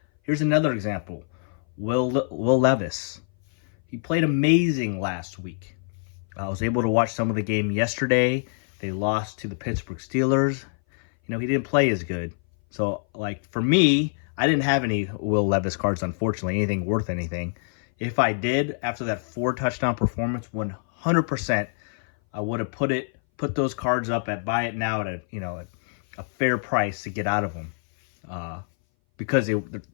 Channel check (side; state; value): right; silent; 59 dB below the other